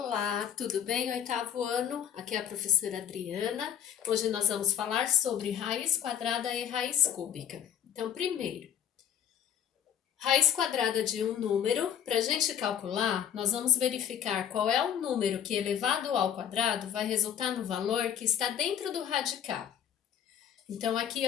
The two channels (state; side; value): quieter; right; 9.4 dB